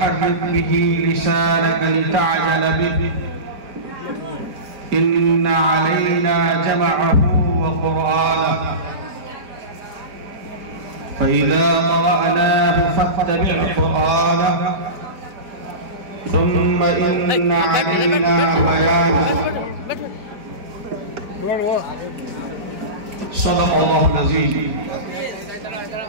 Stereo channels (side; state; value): left; late; 4.5 ms